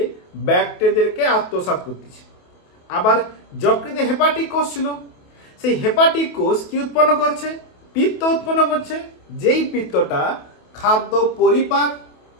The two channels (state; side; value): late; right; 28 ms